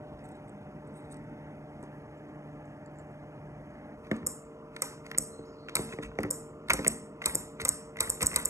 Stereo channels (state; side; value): late; left; 0.14 ms